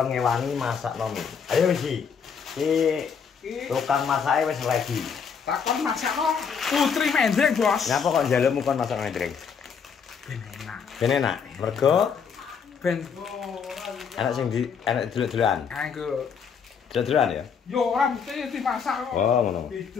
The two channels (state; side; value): quieter; right; 6.5 dB